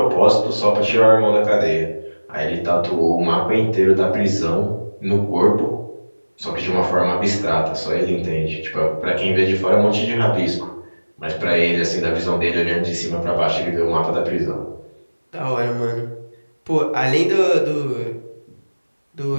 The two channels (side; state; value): both; inverted; correlation -1.00